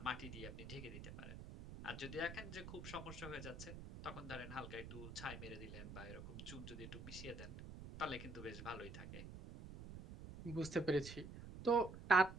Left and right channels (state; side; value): noise; right; rumble, 10 dB below the sound